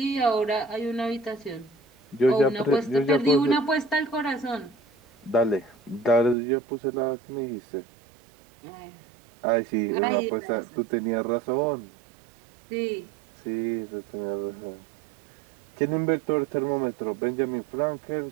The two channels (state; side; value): drops out; left; at 6.4 s